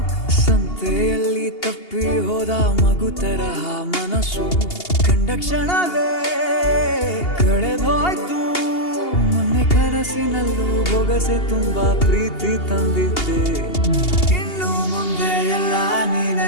ಸಂತೆಯಲ್ಲಿ ತಪ್ಪಿ ಹೋದ ಮಗು ತರಹ ಮನಸ್ಸು ಕಂಡ ಕ್ಷಣವೇ ಕಳೆದೋಯ್ತು. ಮೊನ್ನೆ ಕನಸಿನಲ್ಲೂ ಬೊಗಸೆ ತುಂಬಾ ಪ್ರೀತಿ ತಂದಿದ್ದೆ. ಇನ್ನು ಮುಂದೆ ಎಲ್ಲ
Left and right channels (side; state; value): right; late; 2.8 ms